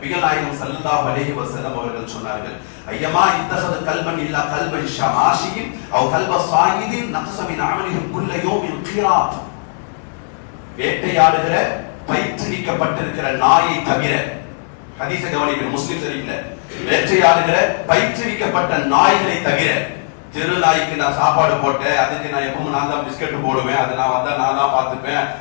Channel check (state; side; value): silent; right; digital silence